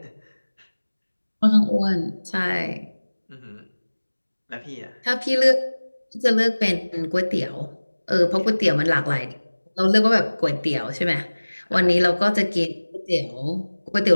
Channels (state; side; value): inverted; both; correlation -1.00